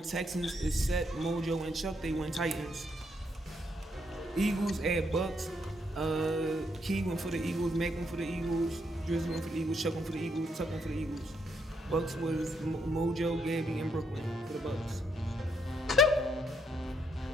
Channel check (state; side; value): normal; both; correlation 0.75